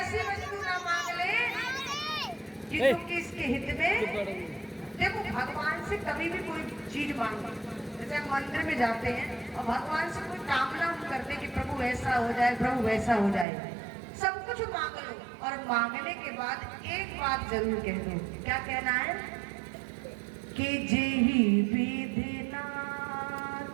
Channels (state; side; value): drops out; left; at 13.5 s